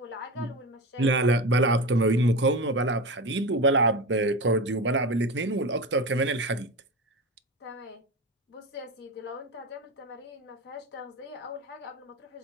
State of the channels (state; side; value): normal; both; correlation 0.24